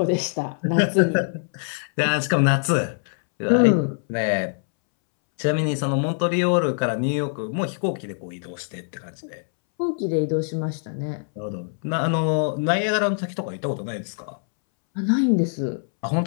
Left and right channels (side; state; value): right; silent; 63 dB below the other